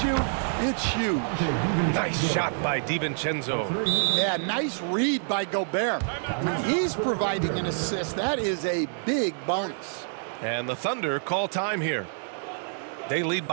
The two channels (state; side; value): silent; left; digital silence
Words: you, it's huge. Nice shot by DiVincenzo. Yeah, nice read by Gobert. When he's providing an assist, that is a big bonus. And the Thunder call time here. They lead